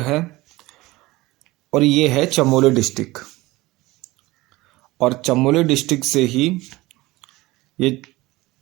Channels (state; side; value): quieter; left; 19.9 dB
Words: है और ये है चमोली डिस्ट्रिक्ट, और चमोली डिस्ट्रिक्ट से ही ये